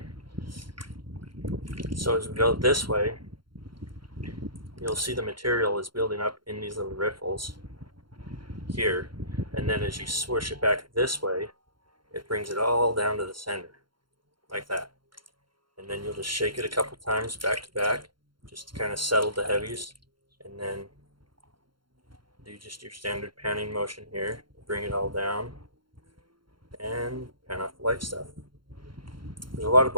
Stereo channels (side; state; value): left; late; 0.73 ms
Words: So as we go this way, you'll see the material is building up in these little riffles here, and then as you swoosh it back this way, it brings it all down to the center, like that. And then you'll just shake it a couple times back to back, just to kind of settle the heavies, and then do just your standard panning motion here. Bring it all down and pan off the light stuff. There's a lot of